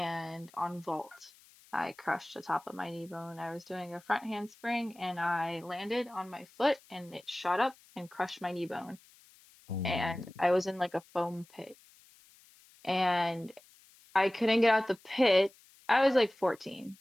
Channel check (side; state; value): left; noise; hiss, 27 dB below the sound